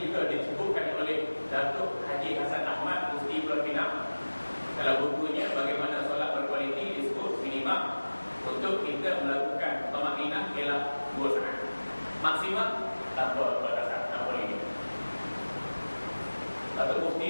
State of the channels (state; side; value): inverted; both; correlation -1.00